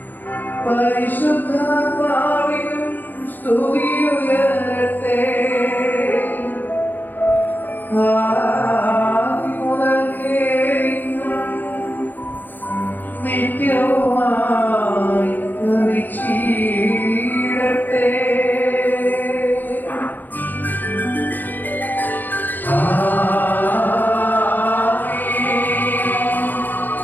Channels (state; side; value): late; right; 0.087 ms